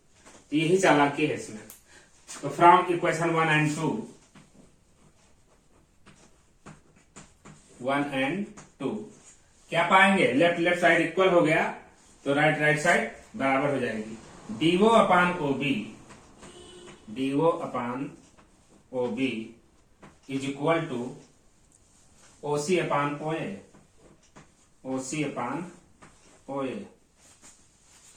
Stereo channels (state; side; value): identical; both; correlation 1.00